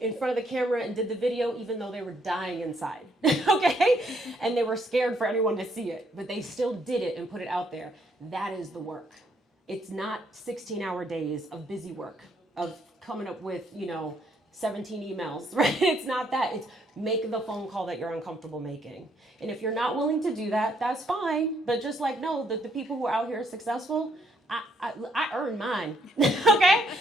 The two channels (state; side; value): normal; both; correlation 0.71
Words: front of the camera and did the video, even though they were dying inside, okay? And they were scared for anyone to see it, but they still did it and put it out there. That is the work. It's not 16-hour days of busy work, of coming up with, 17 emails, right? It's not that. It's make the phone call that you're uncomfortable making. And if you're not willing to do that, that's fine. But just like, know that the people who are out here successful, I earned mine, okay?